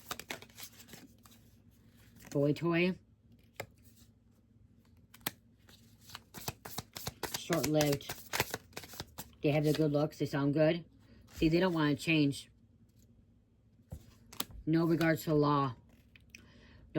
Boy toy. Short-lived. They have the good looks. They sound good. See, they don't want to change. No regards to the law.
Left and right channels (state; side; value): identical; both; correlation 1.00